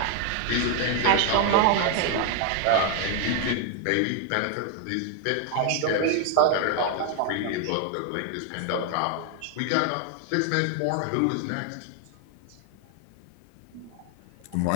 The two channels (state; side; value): different; both; correlation 0.00